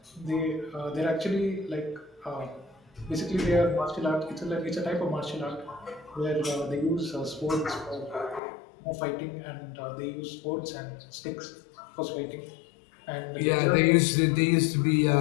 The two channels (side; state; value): right; drops out; at 8.4 s